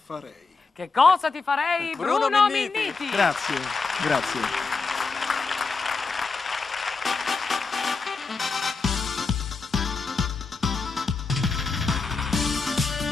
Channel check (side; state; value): right; quieter; 4.4 dB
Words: farei? Che cosa ti farei, Bruno Minniti? Grazie, grazie.